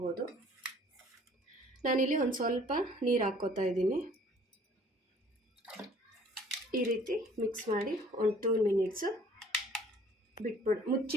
ನಾನಿಲ್ಲಿ ಒಂದು ಸ್ವಲ್ಪ ನೀರು ಹಾಕ್ಕೋತಾ ಇದ್ದೀನಿ. ಈ ರೀತಿ ಮಿಕ್ಸ್ ಮಾಡಿ ಒಂದು 2 ಮಿನಿಟ್ಸು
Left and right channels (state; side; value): normal; both; correlation 0.55